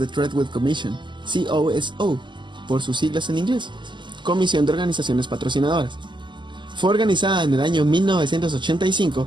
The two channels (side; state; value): left; late; 0.22 ms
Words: Treadwell Commission, COSO, por sus siglas en inglés, Comisión de Organizaciones Patrocinadoras. Fue organizada en el año 1985